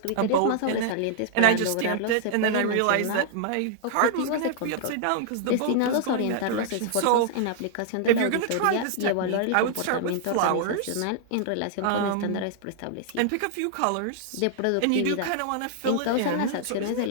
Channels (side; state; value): both; different; correlation -0.01